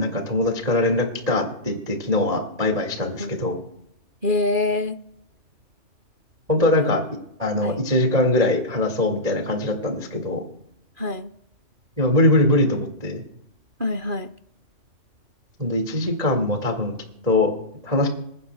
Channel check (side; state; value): left; late; 2.4 ms